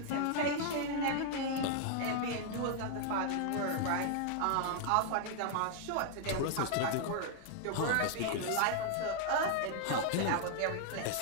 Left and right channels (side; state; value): both; different; correlation 0.00